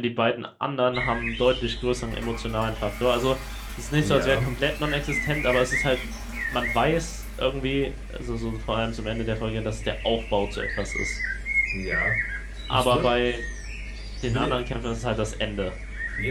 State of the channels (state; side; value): identical; both; correlation 1.00